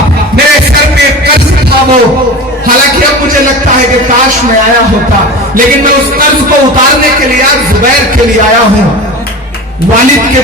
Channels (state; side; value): normal; both; correlation 0.31